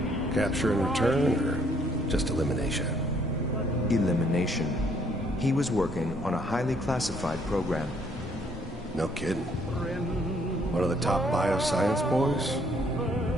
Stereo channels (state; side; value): normal; both; correlation 0.66